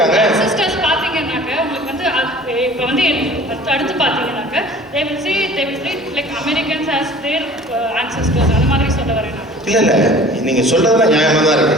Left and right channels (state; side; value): normal; both; correlation 0.46